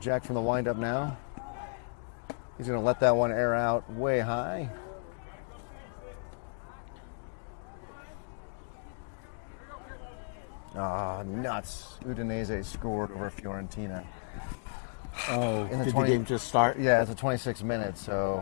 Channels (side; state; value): right; silent; digital silence